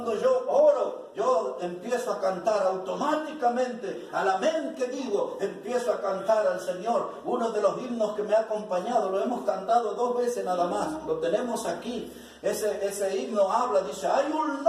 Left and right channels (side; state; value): both; identical; correlation 1.00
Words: yo oro, yo empiezo a cantar automáticamente, al amén que digo, empiezo a cantar al Señor. Uno de los himnos que me ha acompañado, lo hemos cantado 2 veces nada más, lo tenemos aquí. Ese himno habla, dice, hay un